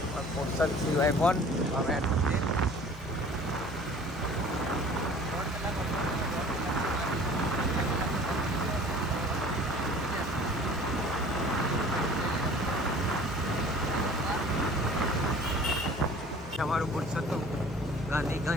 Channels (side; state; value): both; normal; correlation 0.47